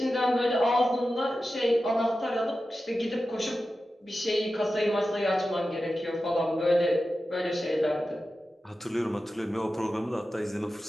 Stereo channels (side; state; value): both; normal; correlation 0.93